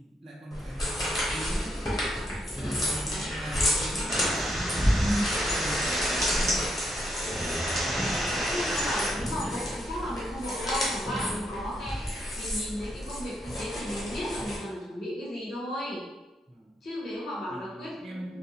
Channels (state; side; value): normal; both; correlation 0.77